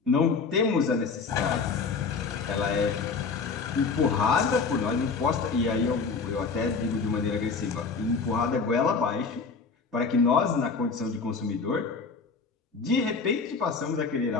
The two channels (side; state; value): right; quieter; 4.8 dB